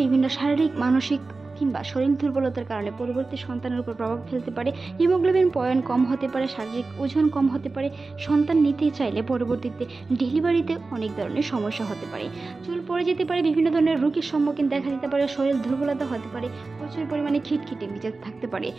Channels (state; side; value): quieter; left; 3.7 dB